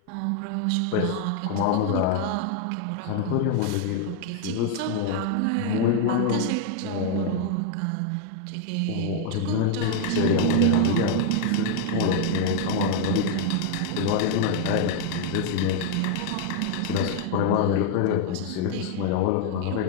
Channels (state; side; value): different; both; correlation 0.00